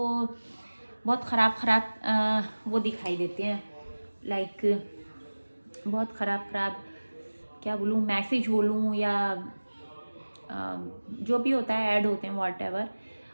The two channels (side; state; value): both; inverted; correlation -1.00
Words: बहुत ख़राब वो दिखाई देते हैं। लाइक बहुत ख़राब क्या बोलूँ, मैसेज बोलूँ या जो भी होता है, ऐड होते हैं, व्हाटएवर